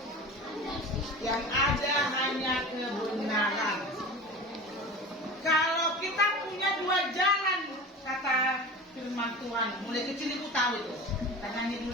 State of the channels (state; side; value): normal; both; correlation 0.33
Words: Yang ada hanya kebenaran. Kalau kita punya dua jalan, kata firman Tuhan, mulai kecil ibu tahu itu. Kita nyanyi